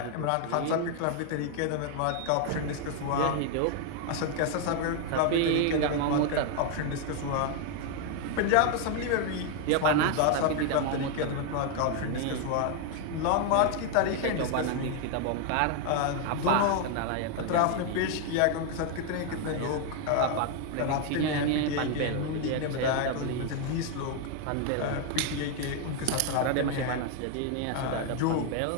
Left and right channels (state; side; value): different; both; correlation 0.01